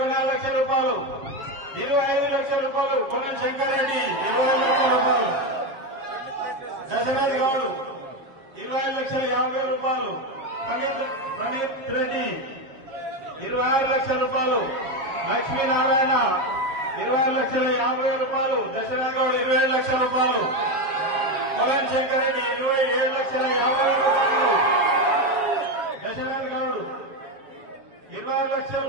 లక్షల రూపాయలు. 25 లక్షల రూపాయలు. కోవన్ శంకరెడ్డి 20 లక్షల రూపాయలు. దశరథ్ గౌడ్ 25,50,000 రూపాయలు. ఫణీత్ రెడ్డి 26 లక్షల రూపాయలు. లక్ష్మీనారాయణ 26,50,000 రూపాయలు. దశరథ్ గౌడ్ 20 లక్షల రూపాయలు. కోవన్ శంకరెడ్డి 27,50,000 రూపాయలు. దశరథ్ గౌడ్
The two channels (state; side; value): late; left; 7.0 ms